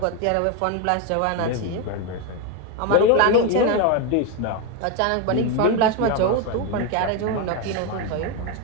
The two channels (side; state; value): both; different; correlation 0.02